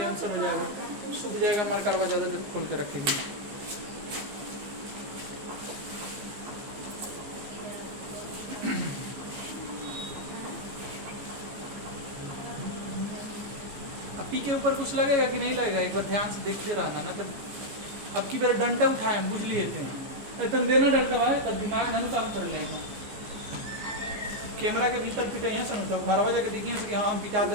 आंसर हो जाएगा। सूख जाएगा मरकरवा, ज़्यादा देर खोल के रखेंगे। पी के ऊपर कुछ लगेगा कि नहीं लगेगा, एक बार ध्यान से देखते रहना ना। तो अब की बार डंडा उठाए बुझ लिए थे, तुम देना डंडा भाई तो दिमाग ना काम कर लेगा। कैमरा के भीतर पिटे हैं सन, तो घर जाके देखिए कि हाँ हम पिटा तो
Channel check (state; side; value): late; left; 14 ms